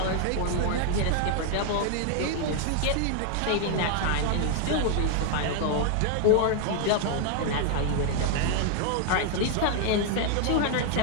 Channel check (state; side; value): different; both; correlation 0.00